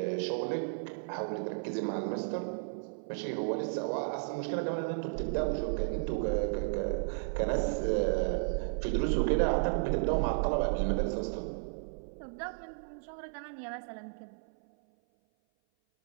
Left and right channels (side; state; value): left; silent; 55 dB below the other